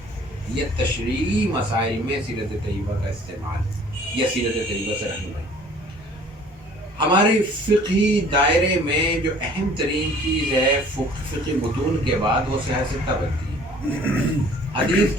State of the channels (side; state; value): both; normal; correlation 0.52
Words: یا تشریعی مسائل میں سیرت طیبہ کا استعمال یا سیرت طیبہ سے رہنمائی۔ ہمارے فقہی دائرے میں جو اہم ترین چیز ہے فقہی متون کے بعد وہ سیاست بنتی ہے۔ حدیث